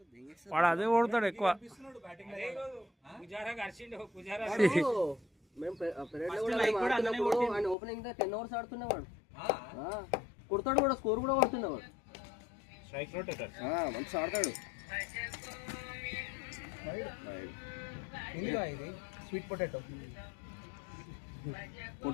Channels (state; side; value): drops out; right; at 7.8 s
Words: వాడు అదే ఓడతాడు ఎక్కువ. Opening 10 overs ఆడుతున్నవాడు. కొడతాడు కూడా, స్కోర్ కూడా కొడుతున్నవాడు. మంచి ఆడతాడు. Sweet potato